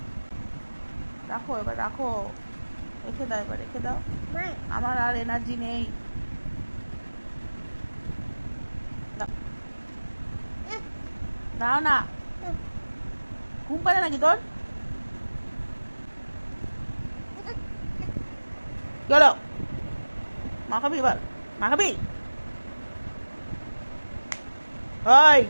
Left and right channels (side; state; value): both; inverted; correlation -1.00